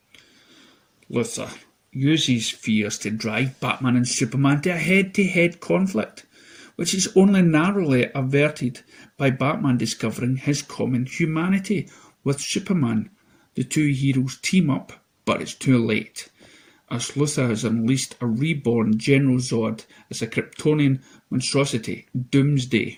Luthor uses fears to drive Batman and Superman to a head-to-head conflict, which is only narrowly averted by Batman discovering his common humanity with Superman. The two heroes team up, but it's too late, as Luthor has unleashed a reborn General Zod as a Kryptonian monstrosity, Doomsday.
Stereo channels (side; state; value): both; identical; correlation 1.00